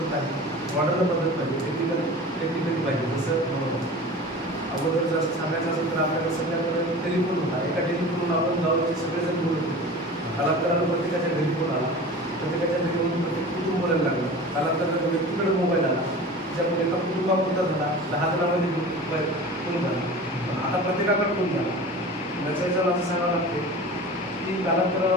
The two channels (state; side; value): normal; both; correlation 0.36